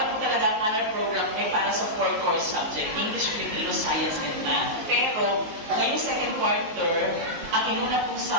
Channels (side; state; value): left; late; 19 ms